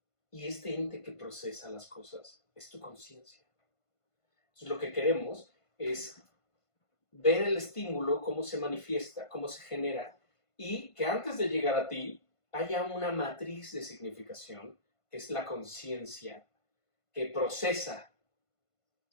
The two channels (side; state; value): right; late; 1.5 ms